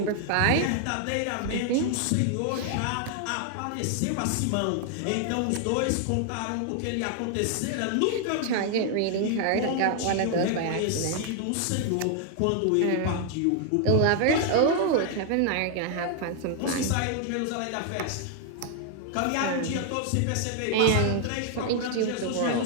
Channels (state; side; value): different; both; correlation 0.00